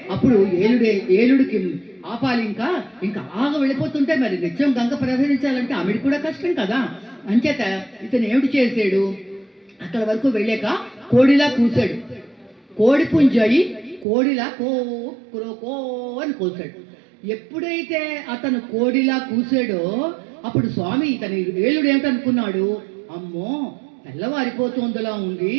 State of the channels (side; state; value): left; drops out; at 14.1 s